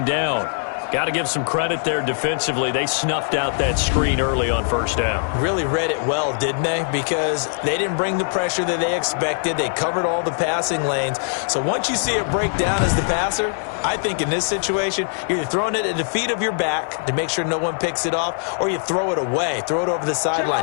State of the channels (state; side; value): silent; right; 56 dB below the other